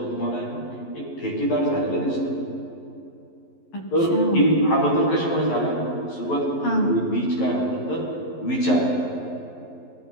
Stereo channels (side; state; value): right; late; 11 ms